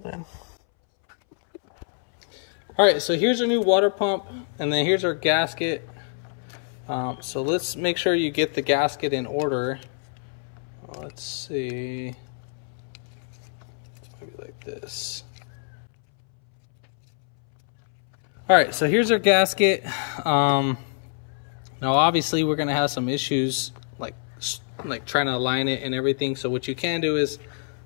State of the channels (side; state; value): right; silent; 62 dB below the other